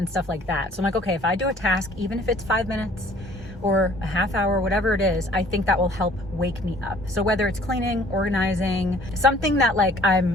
stuff like that. So I'm like, okay, if I do a task, even if it's 5 minutes or a half hour, whatever it is, I think that will help wake me up. So whether it's cleaning, organizing, something that like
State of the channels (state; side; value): normal; both; correlation 0.55